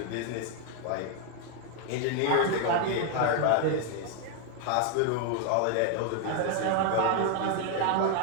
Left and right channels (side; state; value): both; different; correlation 0.00